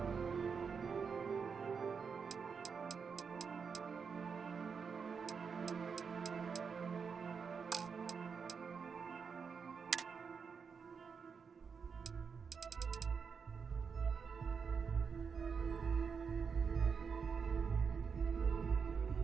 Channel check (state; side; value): quieter; left; 5.9 dB